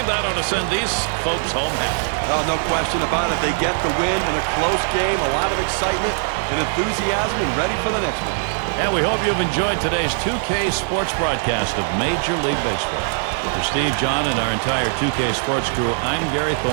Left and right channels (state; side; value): silent; left; 57 dB below the other